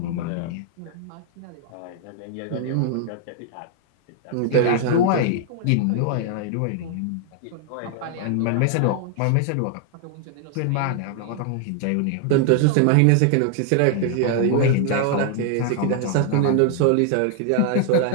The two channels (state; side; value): different; both; correlation 0.00